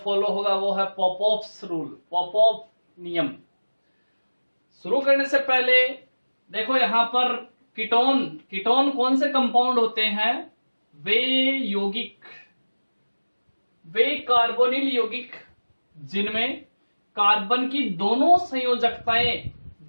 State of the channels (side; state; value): both; inverted; correlation -1.00